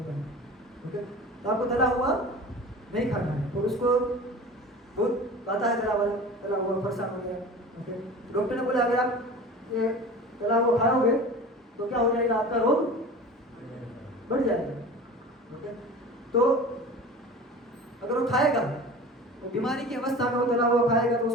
का, ओके, तो आपको तला हुआ नहीं खाना है। तो उसको बहुत आता है तला हुआ परेशान हो गया, ओके, डॉक्टर ने बोला अगर आप ये तला हुआ खाओगे तो क्या हो जाएगा, आपका रोग बढ़ जाएगा, ओके। तो अगर वो खाएगा, वो बीमारी की अवस्था में वो तला हुआ खाएगा, तो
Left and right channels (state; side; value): normal; both; correlation 0.37